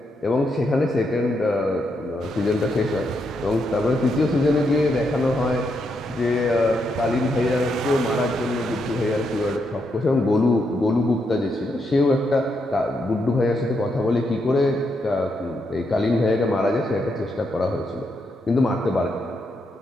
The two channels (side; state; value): both; normal; correlation 0.80